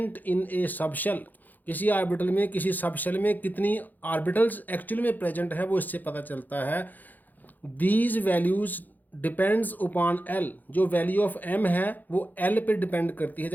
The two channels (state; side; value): late; right; 0.084 ms